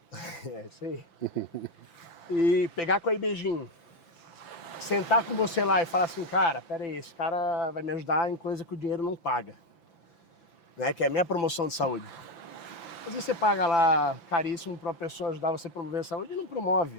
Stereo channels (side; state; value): right; late; 5.9 ms